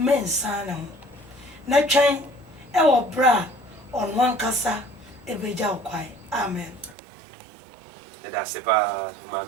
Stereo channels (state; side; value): drops out; left; at 7.0 s